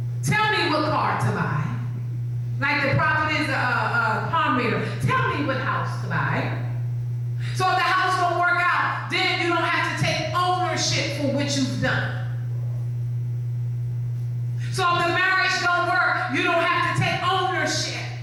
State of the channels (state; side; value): identical; both; correlation 1.00